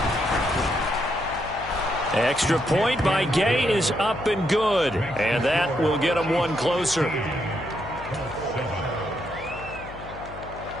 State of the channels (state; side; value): noise; left; hum, 15 dB below the sound